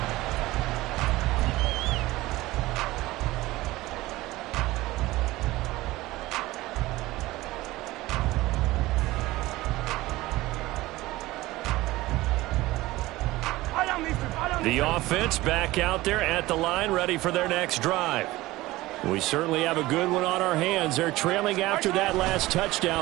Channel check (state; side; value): quieter; left; 18.5 dB